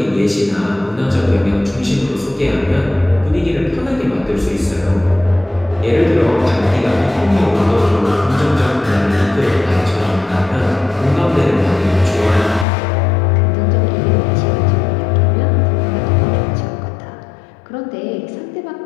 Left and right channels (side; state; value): right; drops out; at 12.7 s